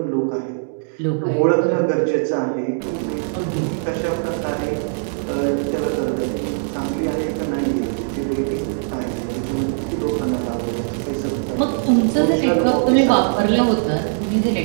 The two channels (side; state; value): left; silent; digital silence